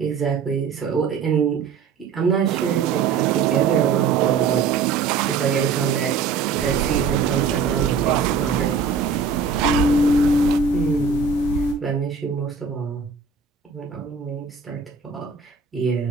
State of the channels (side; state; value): left; quieter; 5.3 dB